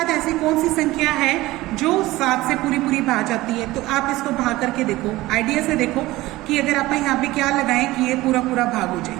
ऐसी कौन सी संख्या है जो 7 से पूरी पूरी भाग जाती है, तो आप इसको भाग करके देखो, आइडिया से देखो कि अगर आप यहाँ पे क्या लगाएं कि ये पूरा पूरा भाग हो जाए।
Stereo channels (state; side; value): quieter; left; 18.4 dB